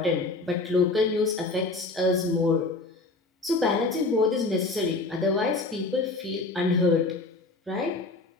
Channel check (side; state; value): right; quieter; 3.4 dB